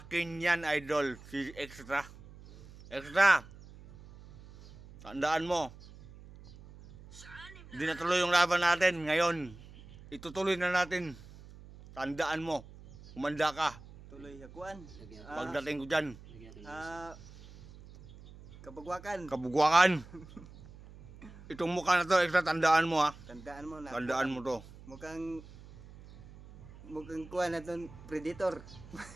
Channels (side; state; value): right; noise; hum, 19 dB below the sound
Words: yan, Idol, si Extra. Extra, tandaan mo, hindi natuloy yung laban natin ngayon. Itutuloy na natin. Tandaan mo, umanda ka. Tuloy yakuan. Pagdating ko dyan. Kabugwakan. Itong mukha na to, Extra, tandaan mo ha. Tandaan mo na. Tandaan mo to. Mukhang kuha na itong predator.